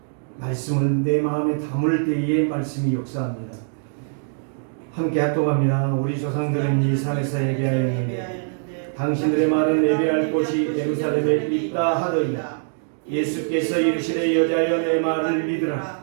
말씀을 내 마음에 담을 때에 말씀이 역사합니다. 함께 합독합니다. 우리 조상들은 이 산에서 예배하였는데 당신들의 말은 예배할 곳이 예루살렘에 있다 하더니 예수께서 이르시되 여자여 내 말을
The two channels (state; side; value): silent; left; digital silence